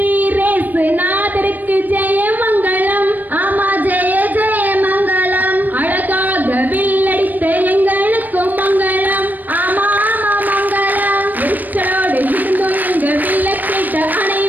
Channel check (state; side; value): late; left; 0.086 ms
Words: நாதருக்கு ஜெய மங்களம். ஆமா, ஜெய ஜெய மங்களம். அழகாக வில்லடித்த எங்களுக்கும் மங்களம். ஆமா ஆமா மங்களம். எரிச்சலோடு இருந்தும் எங்க வில்ல கேட்ட